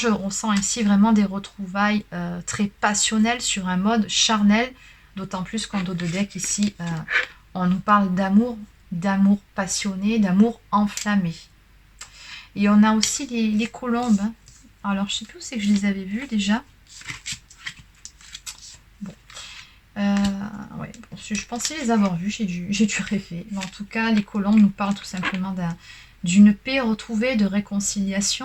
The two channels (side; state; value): both; identical; correlation 1.00